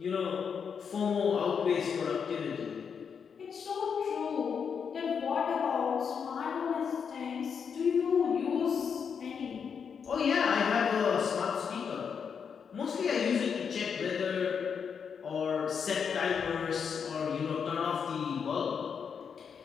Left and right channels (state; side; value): quieter; right; 6.7 dB